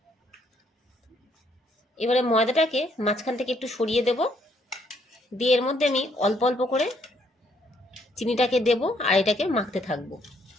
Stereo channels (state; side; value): normal; both; correlation 0.69